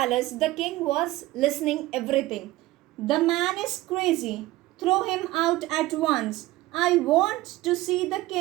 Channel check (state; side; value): quieter; left; 17.7 dB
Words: the king was listening everything. The man is crazy. Throw him out at once. I want to see the